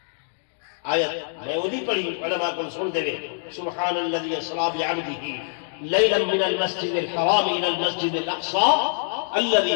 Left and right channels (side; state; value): right; silent; digital silence